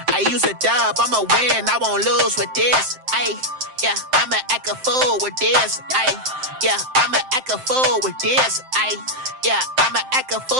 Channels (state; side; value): late; left; 7.7 ms